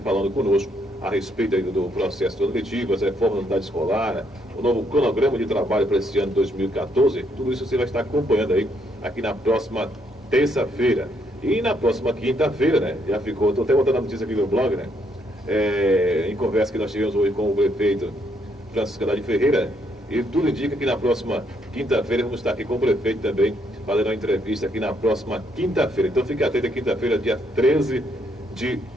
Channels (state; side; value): normal; both; correlation 0.73